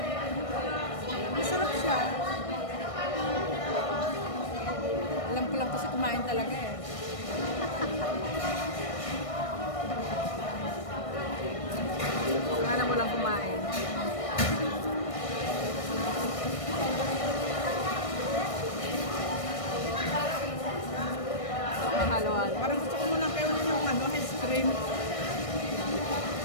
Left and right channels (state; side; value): late; right; 1.6 ms